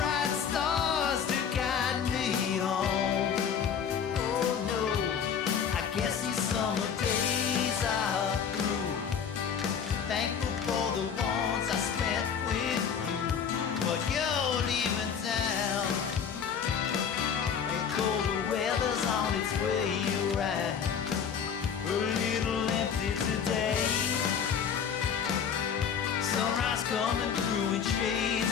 stars to guide me home. Oh no, I guess these summer days are through. Thankful for the ones I spent with you, but you're leaving town, and colder weather's on its way around. A little empty today, sunrise coming through in shades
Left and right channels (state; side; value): quieter; right; 7.4 dB